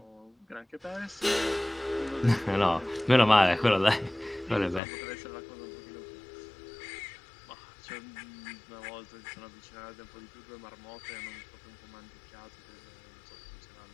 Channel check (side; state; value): right; drops out; at 4.8 s